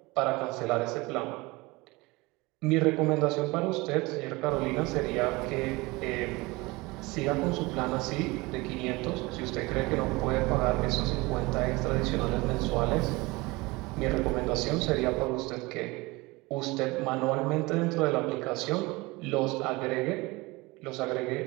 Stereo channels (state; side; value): quieter; left; 23.1 dB